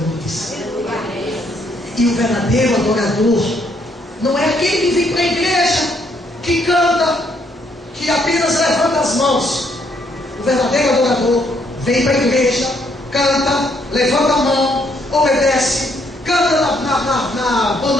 E o verdadeiro adorador não é aquele que vem para a igreja, que canta, que apenas levanta as mãos. O verdadeiro adorador vem para a igreja, canta, levanta a mão, obedece, canta na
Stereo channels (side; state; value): both; normal; correlation 0.70